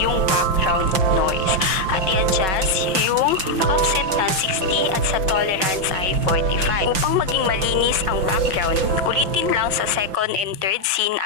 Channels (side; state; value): left; late; 5.8 ms